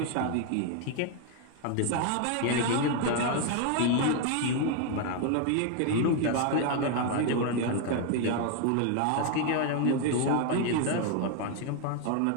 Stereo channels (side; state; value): both; different; correlation 0.01